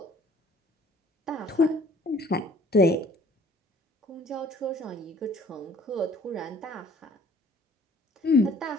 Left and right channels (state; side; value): normal; both; correlation 0.54